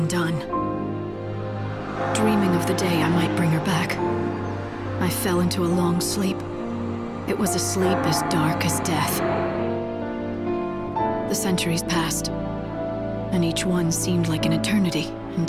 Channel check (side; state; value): both; identical; correlation 1.00